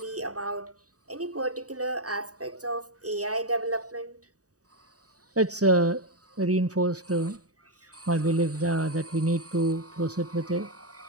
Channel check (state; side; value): late; left; 0.66 ms